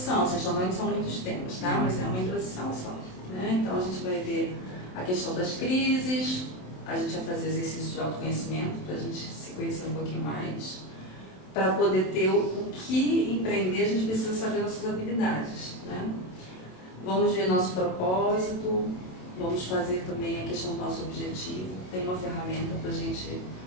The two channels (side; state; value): right; late; 27 ms